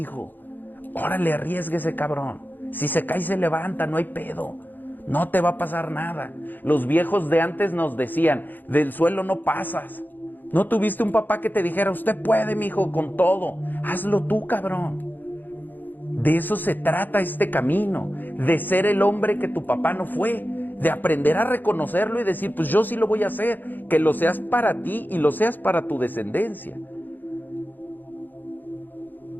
Órale, arriésguese, cabrón. Si se cae, se levanta, no hay pedo. No te va a pasar nada. Los viejos de antes nos decían, del suelo no pasas. ¿No tuviste un papá que te dijera, usted puede, mijo, con todo? Hazlo tú, cabrón. De eso se trata este camino, de ser el hombre que tu papá no fue, de aprender a reconocerlo y decir, pues yo sí lo voy a hacer, que lo seas para ti y lo seas para tu descendencia.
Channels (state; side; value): late; right; 0.089 ms